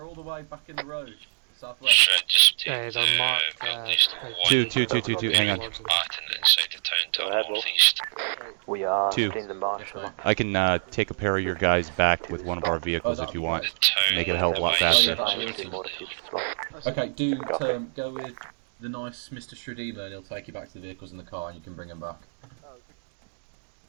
all the way back in the road, southwest. They're marked. Two, hang on. We are Two. in the marshal. I can take a pair of your guys back with one of our vehicles if you want. Make it a hell of a lot faster. Okay, go with the nice Mr. Shredeemer and he'll take you back to the vehicles in the car and you can bring them back.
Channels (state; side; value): silent; left; digital silence